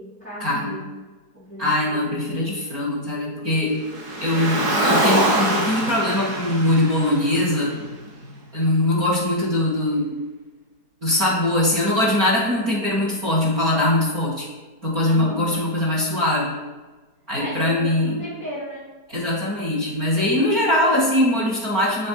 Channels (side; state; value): left; late; 4.4 ms